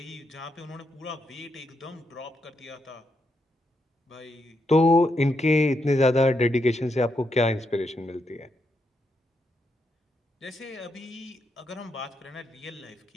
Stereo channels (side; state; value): both; normal; correlation 0.81